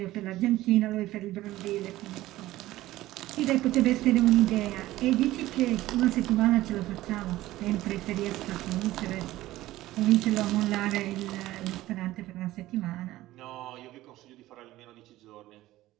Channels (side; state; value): left; quieter; 16.3 dB